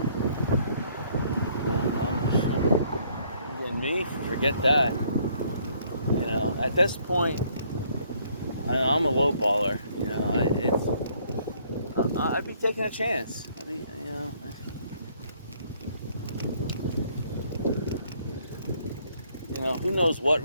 Again, me, forget that. At this point, I'm a low baller. I'd be taking a chance. Who knows what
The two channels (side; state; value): both; inverted; correlation -0.65